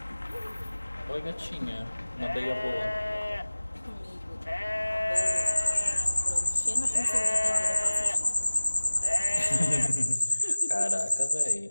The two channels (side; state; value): both; inverted; correlation -1.00